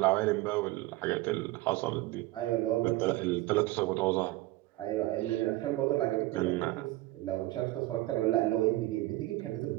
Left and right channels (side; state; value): left; quieter; 18.3 dB